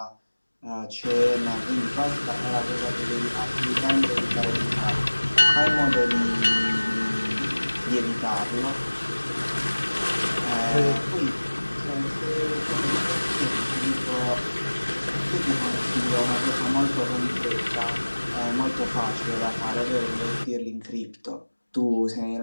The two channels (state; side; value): inverted; both; correlation -1.00